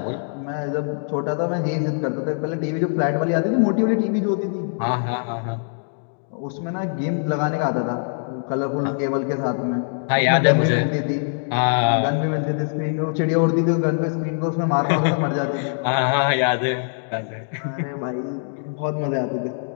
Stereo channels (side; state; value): right; silent; digital silence